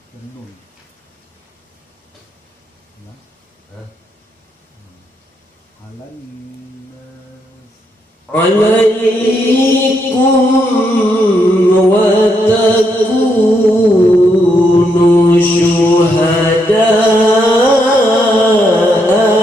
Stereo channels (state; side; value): normal; both; correlation 0.78